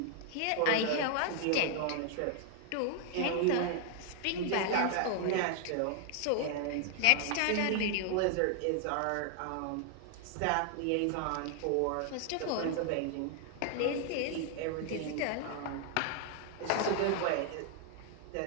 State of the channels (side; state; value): both; different; correlation 0.00